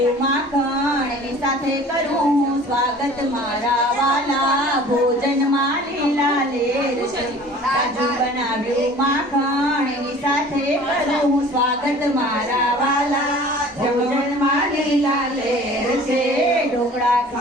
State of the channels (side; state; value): both; normal; correlation 0.46